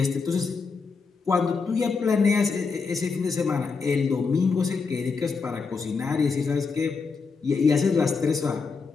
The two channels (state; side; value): quieter; right; 4.9 dB